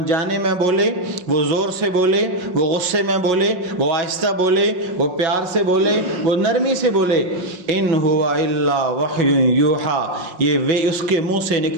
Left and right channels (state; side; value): late; left; 5.5 ms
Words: میں بولے، وہ زور سے بولے، وہ غصے میں بولے، وہ آہستہ بولے، وہ پیار سے بولے، وہ نرمی سے بولے، ان ہوا الا وحی یوحی، یہ اس کے منہ سے